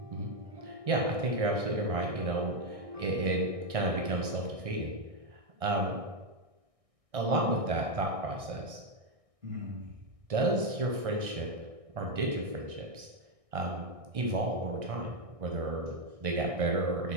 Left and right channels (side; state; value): left; late; 1.6 ms